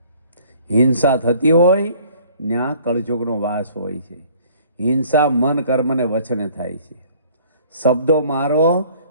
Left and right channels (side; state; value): both; inverted; correlation -0.55